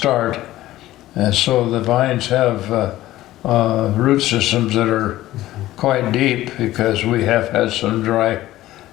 And so the vines have root systems that are quite deep, because we have had some dry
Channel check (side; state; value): right; quieter; 15.4 dB